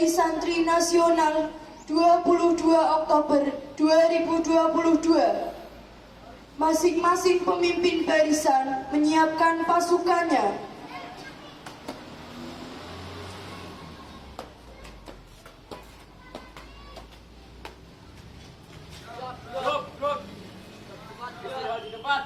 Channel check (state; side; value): identical; both; correlation 1.00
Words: Hari Santri Nasional 22 Oktober 2022. Masing-masing pemimpin barisan menyiapkan pasukannya. Di depan,